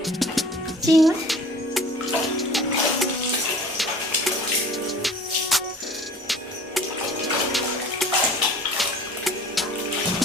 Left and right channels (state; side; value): normal; both; correlation 0.45